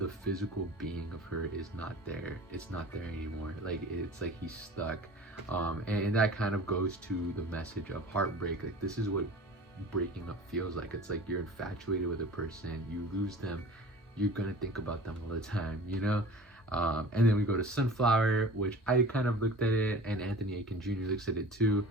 physical being of her is not there. It's not there anymore. Like, it's like he's stuck. And that kind of goes to the message of heartbreak. Like, this is what breaking up feels like. It's like you're infatuated with a person, you lose them, you're gonna think about them all the time, and then we go to Sunflower, which I kind of looked at it, and Anthony Aiken Jr. looks at it too.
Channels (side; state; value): both; normal; correlation 0.41